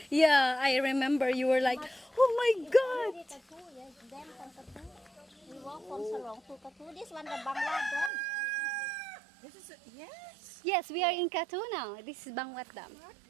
yeah, I remember you were like, oh my God. Katu, yes. Dam from Katu. We walk from Salong to Katu. This one, the Bangla Dam. This is yes. Yes, we are in Katu now. This is Bangwat Dam.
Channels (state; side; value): drops out; left; at 8.1 s